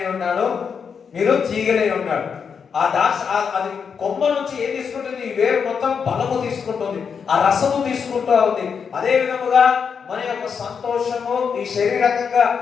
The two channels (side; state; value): right; quieter; 6.4 dB